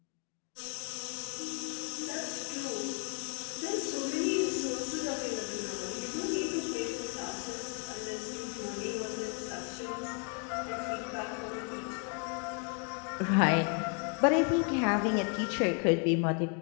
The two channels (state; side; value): quieter; right; 39.7 dB